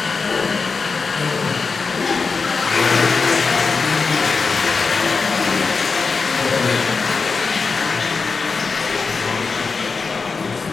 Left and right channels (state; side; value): quieter; right; 4.7 dB